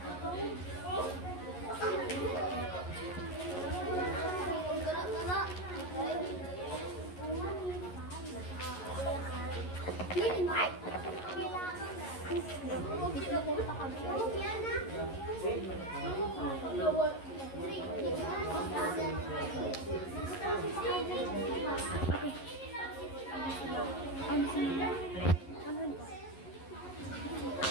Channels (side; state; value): right; late; 11 ms